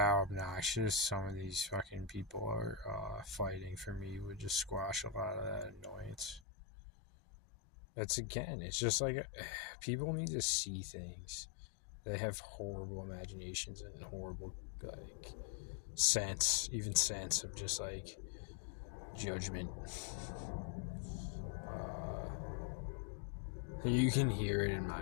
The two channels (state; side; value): drops out; right; at 6.4 s